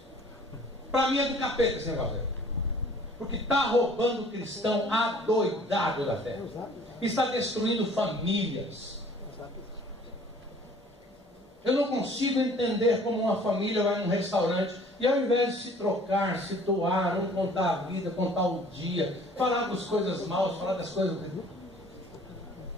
Para mim é do capeta esse negócio aí. Porque está roubando o cristão adoidado da fé. Está destruindo famílias. Eu não consigo entender como uma família vai num restaurante e ao invés de se trocar, se doar, não contar a vida, contar o dia, falar das coisas maus, falar das coisas...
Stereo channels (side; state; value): both; normal; correlation 0.53